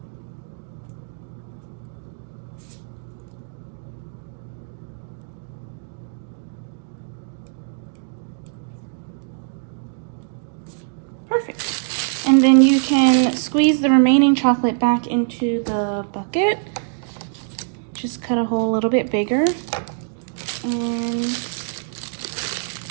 Perfect. And then you can squeeze the remaining chocolate back into the bucket. Just cut a hole a little bit bigger. And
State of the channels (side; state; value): left; silent; digital silence